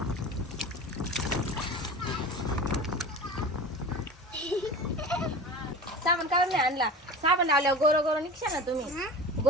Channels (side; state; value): both; normal; correlation 0.33